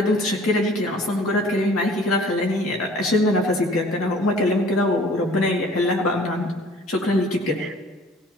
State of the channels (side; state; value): both; normal; correlation 0.51